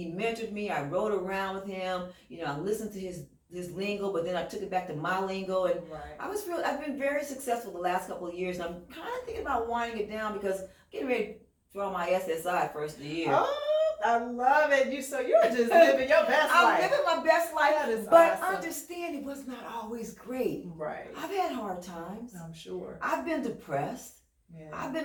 mentored me. I rode around with him. I listened to his lingo, but then I took it back to my lingo, and I've been very successful the last couple of years, and I'm kind of thinking about winding it down because I'm getting ready to draw my SSI first of the year. Oh, I love it. You're just living your best life. I'm living my best life, that is but awesome. understand it was not always great. Right. I've had hard times. I'm sure. I've been depressed. Yeah. I've been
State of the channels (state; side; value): identical; both; correlation 1.00